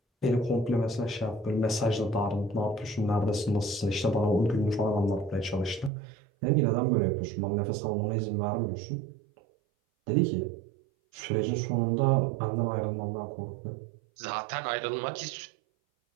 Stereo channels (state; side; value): drops out; left; at 5.9 s